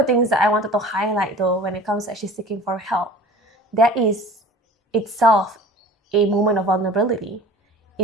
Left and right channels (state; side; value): normal; both; correlation 0.42